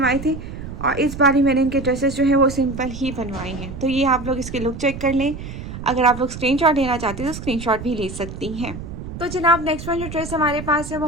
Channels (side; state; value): right; noise; rumble, 10 dB below the sound